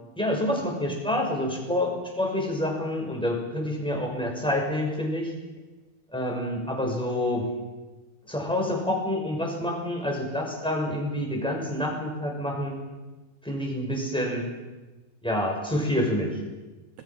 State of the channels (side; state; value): both; normal; correlation 0.32